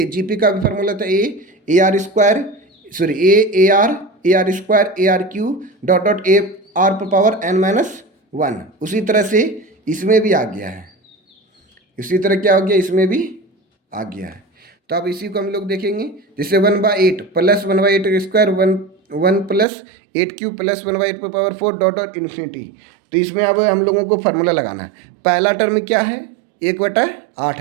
जीपी का भी फार्मूला था A R square, sorry A R square, A R cube, dot dot A r पर पावर n - 1। उसी तरह से इसमें भी आ गया है, इसी तरह क्या हो गया? इसमें भी आ गया है। तो अब इसी को हम लोग देखेंगे। जैसे 1/8 plus 1/8 square, 1 plus 8 cube plus 1/8 पर पावर 4 डॉट डॉट इन्फिनिटी। तो इसमें अब हम लोगों को फार्मूला लगाना है। पहला टर्म क्या है? 1/8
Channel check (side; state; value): left; drops out; at 19.7 s